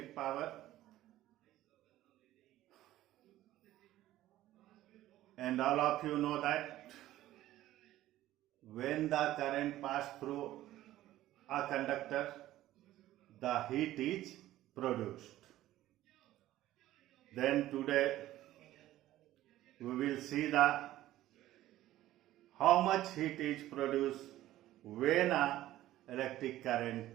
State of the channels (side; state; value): left; quieter; 14.6 dB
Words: power, and all of you know that when the current passes through a conductor, the heat is produced. Then today we will see how much heat is produced when a electric